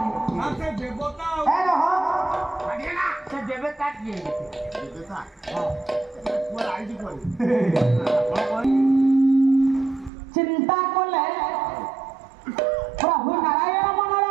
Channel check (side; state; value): left; drops out; at 10.1 s